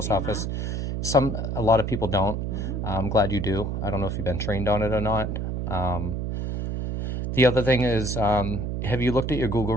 understand office. A lot of people don't. I'm glad you do. I don't know if you've been trained on it or not. The other thing is, have you looked at your Google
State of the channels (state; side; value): noise; right; hum, 2 dB below the sound